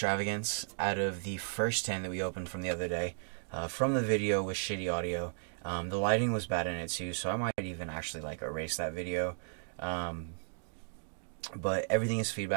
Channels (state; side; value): silent; left; digital silence